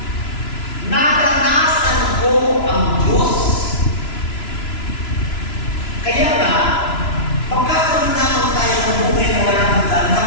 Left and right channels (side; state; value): right; late; 3.0 ms